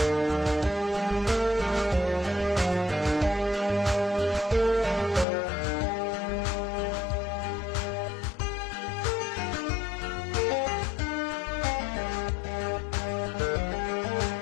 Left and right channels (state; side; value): drops out; right; at 5.2 s